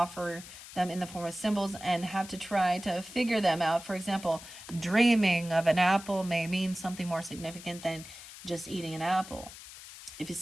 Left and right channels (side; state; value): left; noise; hiss, 15 dB below the sound